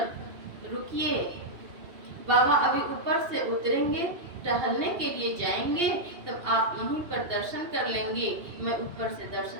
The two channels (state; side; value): late; left; 2.8 ms